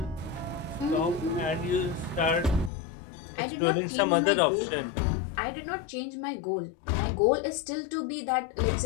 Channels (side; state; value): right; drops out; at 2.7 s